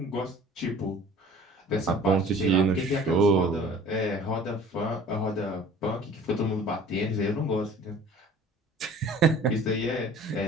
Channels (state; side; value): normal; both; correlation 0.47